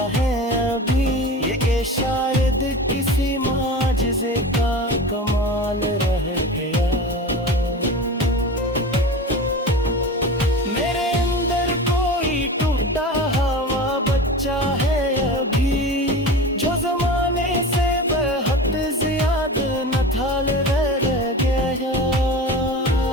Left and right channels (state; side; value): normal; both; correlation 0.32